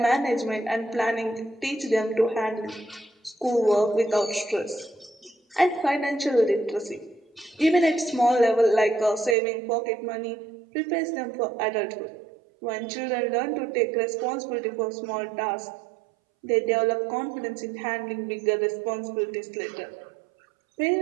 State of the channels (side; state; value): left; drops out; at 9.3 s